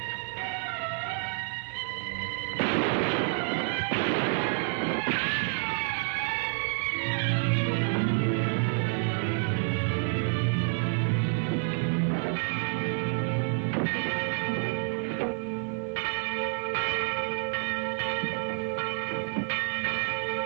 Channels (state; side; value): silent; left; 59 dB below the other